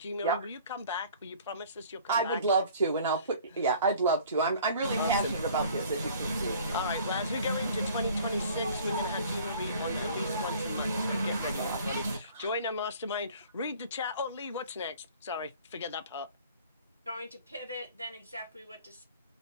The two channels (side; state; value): both; inverted; correlation -0.51